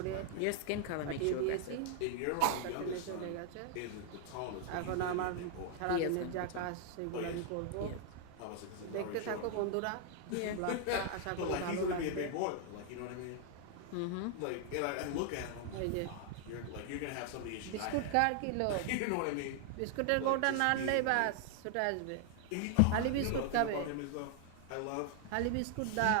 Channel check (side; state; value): both; different; correlation 0.00